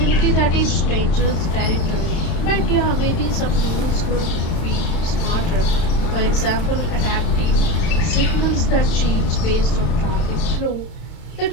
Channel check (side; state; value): right; late; 31 ms